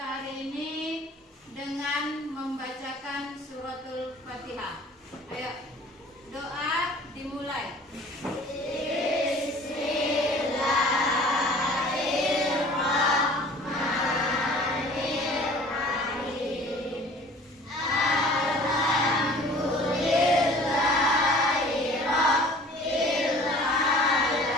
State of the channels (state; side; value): normal; both; correlation 0.48